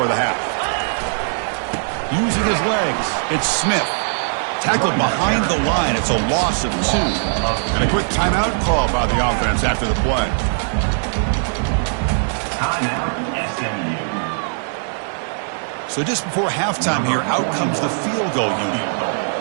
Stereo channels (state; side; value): silent; left; 66 dB below the other